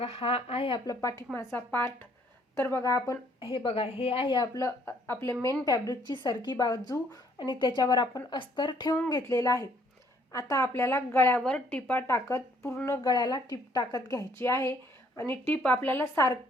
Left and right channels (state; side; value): normal; both; correlation 0.64